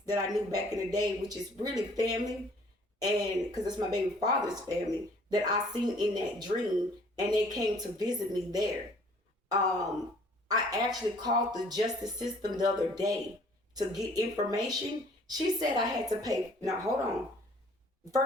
that I knew back in the day, which is really family, and because it's my baby father's family that I seen in that dream, and they came to visit me there. um, I actually called the justice system the other day to get information. She said I had to pay. Now, hold on.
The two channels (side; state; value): both; normal; correlation 0.56